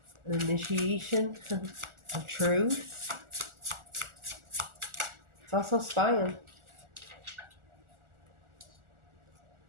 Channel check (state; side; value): late; left; 1.4 ms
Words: an initiation of truth. It's also spying.